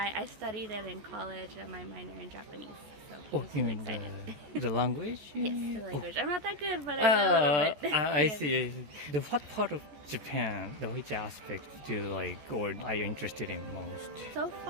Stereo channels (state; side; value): late; left; 14 ms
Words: studied it in college, my minor in Japanese. So you mean the language? Yes, the language. I'm not that good, but I know a little bit. I see. What part of Japan, which aspect do you like, or are you interested in most? So